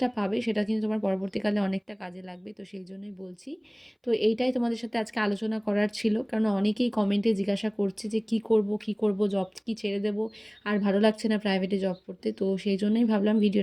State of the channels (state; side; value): identical; both; correlation 1.00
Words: পাবে সেটা কিন্তু তোমার পরবর্তীকালে অনেকটা কাজে লাগবে। তো সেই জন্যই বলছি। তো এইটাই তোমাদের সাথে আজকে আলোচনা করার ছিল, কারণ অনেকেই কমেন্টে জিজ্ঞাসা করছে যে কী করব, কী করব, জব কি ছেড়ে দেবো, আর ভালো লাগছে না প্রাইভেটে জব করতে। তো সেই জন্যই ভাবলাম